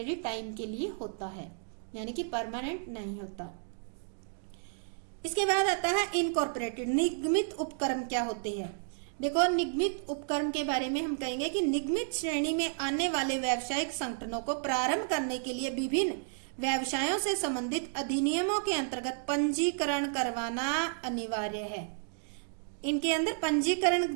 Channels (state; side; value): silent; left; digital silence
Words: टाइम के लिए होता है, यानी कि परमानेंट नहीं होता। इसके बाद आता है इनकॉर्पोरेटेड, निगमित उपक्रम क्या होते हैं। देखो, निगमित उपक्रम के बारे में हम कहेंगे कि निगमित श्रेणी में आने वाले व्यावसायिक संगठनों को प्रारंभ करने के लिए विभिन्न व्यवसायों से संबंधित अधिनियमों के अंतर्गत पंजीकरण करवाना अनिवार्य है। इनके अंदर पंजीकरण